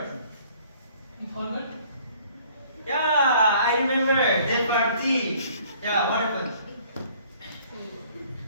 You forgot? Yeah, I remember that party. Yeah, what happened?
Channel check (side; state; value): both; inverted; correlation -0.57